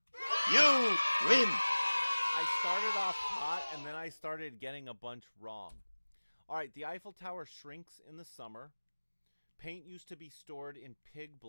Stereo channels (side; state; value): both; inverted; correlation -1.00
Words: You win! I started off hot, and then I started getting a bunch wrong. All right, the Eiffel Tower shrinks in the summer. Paint used to be stored in pig